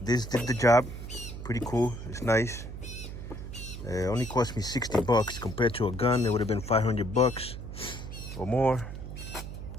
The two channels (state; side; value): noise; right; hum, 9 dB below the sound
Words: the job. Pretty cool. It's nice. It only cost me 60 bucks. Compared to a gun, it would have been 500 bucks or more.